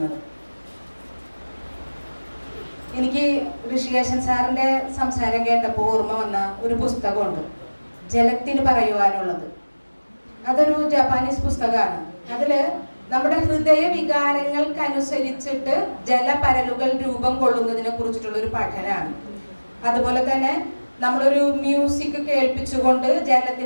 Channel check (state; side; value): inverted; both; correlation -1.00